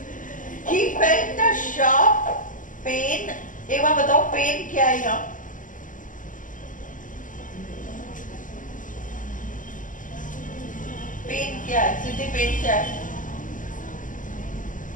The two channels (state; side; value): late; right; 0.38 ms